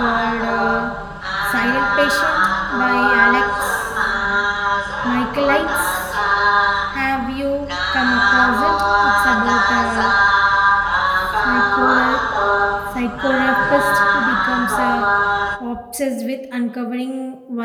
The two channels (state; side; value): identical; both; correlation 1.00